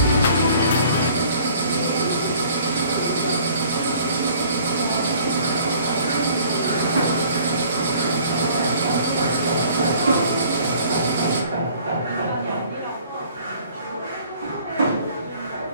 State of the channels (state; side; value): inverted; both; correlation -0.54